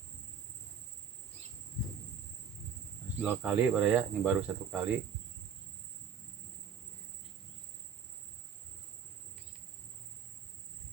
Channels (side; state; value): left; quieter; 7.3 dB